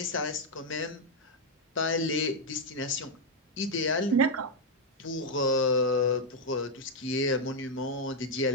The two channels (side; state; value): both; normal; correlation -0.01